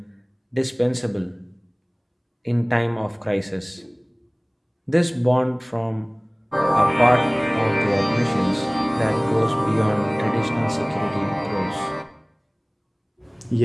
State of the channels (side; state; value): both; identical; correlation 1.00